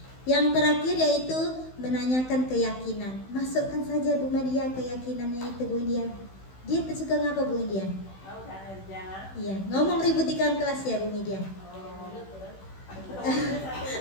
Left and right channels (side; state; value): right; late; 16 ms